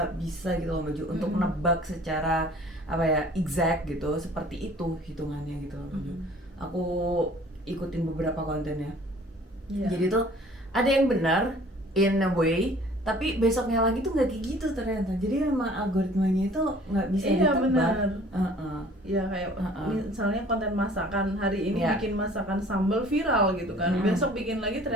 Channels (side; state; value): both; normal; correlation 0.51